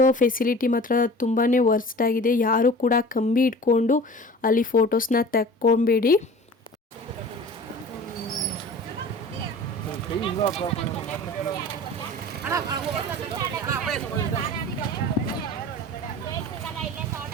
ಫೆಸಿಲಿಟಿ ಮಾತ್ರ ತುಂಬಾ ವರ್ಸ್ಟ್ ಆಗಿದೆ. ಯಾರು ಕೂಡ ಕಂಬಿ ಇಟ್ಕೊಂಡು ಅಲ್ಲಿ ಫೋಟೋಸ್ನ ತಕ್ಕೊಬೇಡಿ.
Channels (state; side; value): normal; both; correlation 0.40